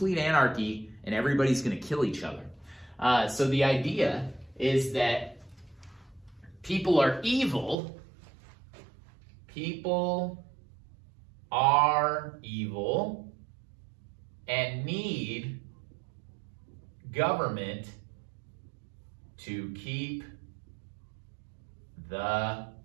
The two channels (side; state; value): left; drops out; at 7.8 s